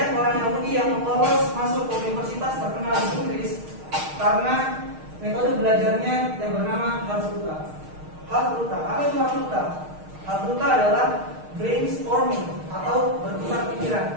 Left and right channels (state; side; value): late; left; 6.5 ms